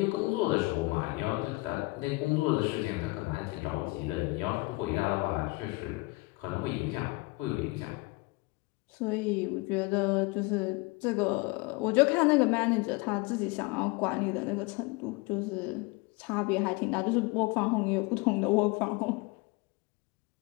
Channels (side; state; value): right; quieter; 24.6 dB